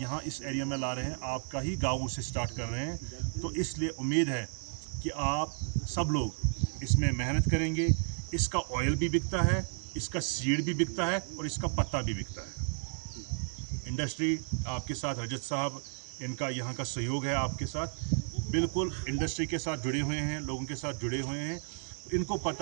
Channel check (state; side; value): silent; left; 56 dB below the other